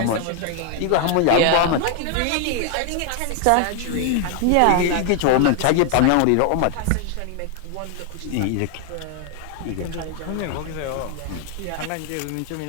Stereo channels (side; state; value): both; different; correlation 0.00